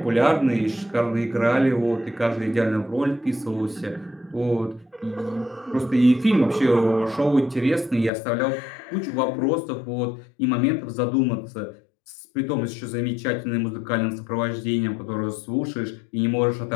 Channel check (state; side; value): drops out; right; at 8.1 s